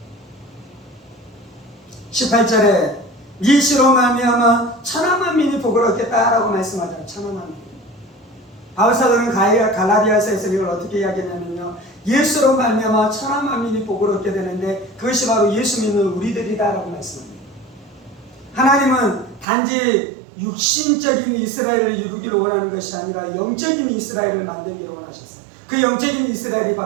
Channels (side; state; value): left; drops out; at 19.5 s